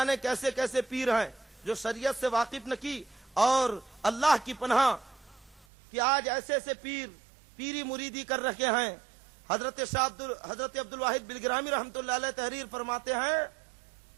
کیسے کیسے پیر ہیں جو شریعت سے واقف نہ کی۔ اور اللہ کی پناہ کہ آج ایسے ایسے پیر پیری مریدی کر رکھے ہیں۔ حضرت عبد الواحد بلگرامی رحمۃ اللہ علیہ تحریر فرماتے ہیں،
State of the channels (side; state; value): left; drops out; at 5.7 s